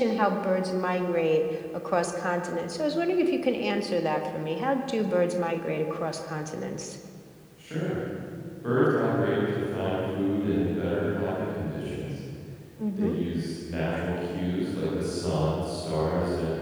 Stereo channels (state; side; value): identical; both; correlation 1.00